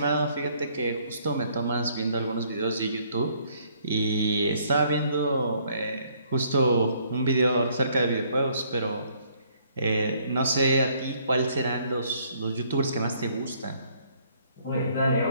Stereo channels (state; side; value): inverted; both; correlation -0.65